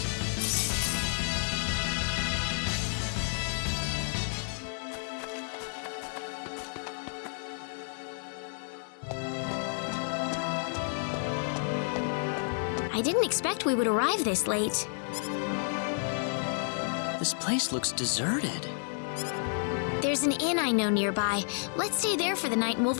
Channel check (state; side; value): silent; right; 57 dB below the other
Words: I didn't expect we would arrive this late. This place looks deserted. There's an inn I know nearby. Let's stay there for the night and we'll